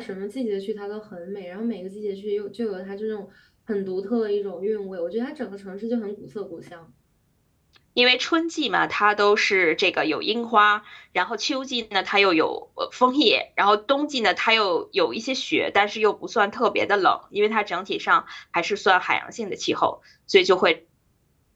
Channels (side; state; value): both; identical; correlation 1.00